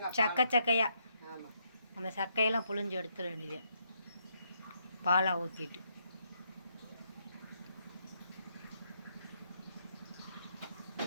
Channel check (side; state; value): both; inverted; correlation -0.76